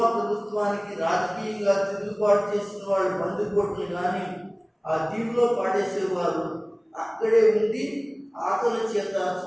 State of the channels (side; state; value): both; identical; correlation 1.00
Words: ప్రభుత్వానికి రాజకీయంగా తిరుగుబాటు చేసిన వాళ్ళు బందిపోట్లు కానీ ఆ దీవిలో పాడేసేవారు. అక్కడే ఉండి ఆకలి చేత